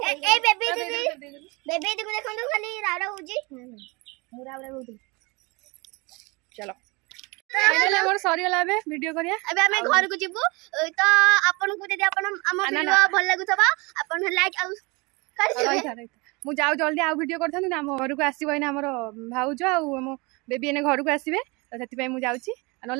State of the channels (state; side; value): quieter; left; 26.8 dB